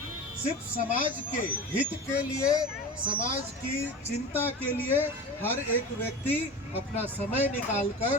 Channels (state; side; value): normal; both; correlation 0.31